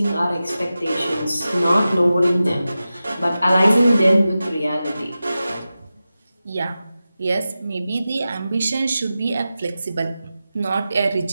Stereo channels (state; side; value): inverted; both; correlation -0.94